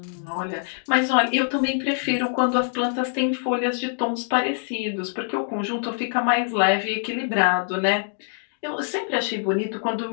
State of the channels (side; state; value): right; silent; digital silence